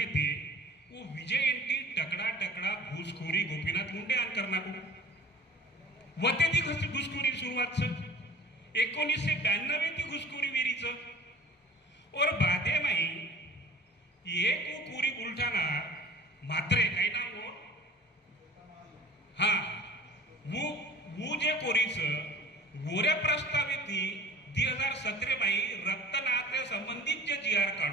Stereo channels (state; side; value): normal; both; correlation 0.43